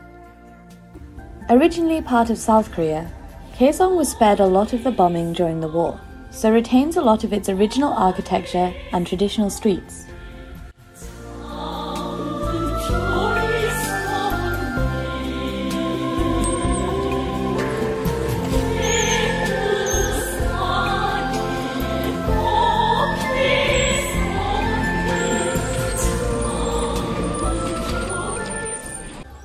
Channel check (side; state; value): both; identical; correlation 1.00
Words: Originally part of South Korea, KAESOng was spared a lot of the bombing during the war, so retains a lot of its original architecture and traditional streets.